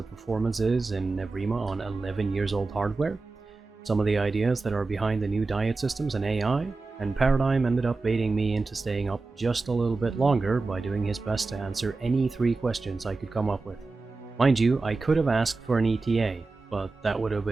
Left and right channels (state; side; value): quieter; left; 3.7 dB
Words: performance is in EVRIMA on 11 years old hardware, some of the ideas that are behind the new diet systems and AI, and Paradigm ended up baiting me into staying up just a little bit longer by doing his best to answer any 3 questions I could come up with. Mind you, I could have asked for an ETA, but that would have